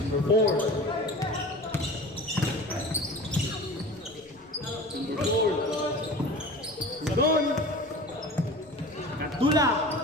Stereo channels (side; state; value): left; noise; rumble, 29 dB below the sound